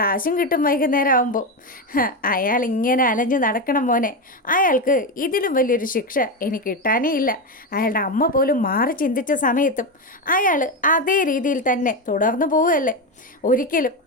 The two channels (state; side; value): normal; both; correlation 0.13